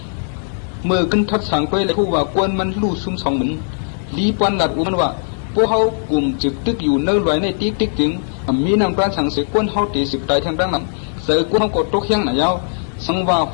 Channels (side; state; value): right; silent; digital silence